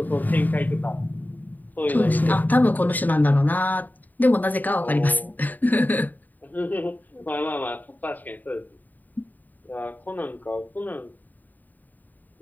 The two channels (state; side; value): late; right; 0.084 ms